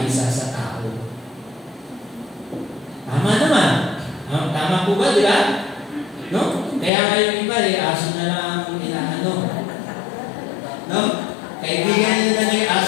sa tao. Tama naman. Tama po ba, di ba? No? Kaya ngayon iba, aso na lang ang inaano. No? Kaibigan niyo na yung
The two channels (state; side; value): drops out; right; at 6.9 s